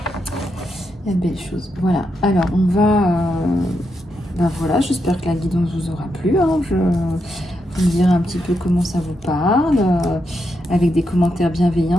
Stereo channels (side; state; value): both; normal; correlation 0.83